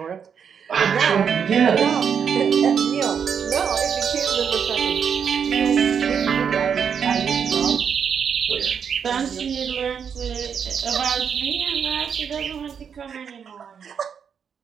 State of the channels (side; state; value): left; quieter; 7.2 dB